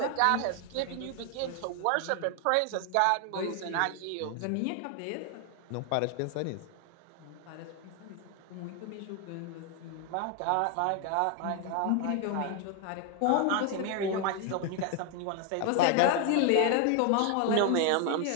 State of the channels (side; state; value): both; different; correlation 0.00